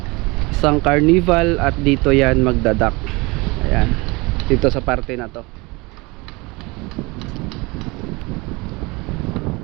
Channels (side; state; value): left; quieter; 25.0 dB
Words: isang carnival, at dito yan magdadak. Ayan, dito sa parte na to.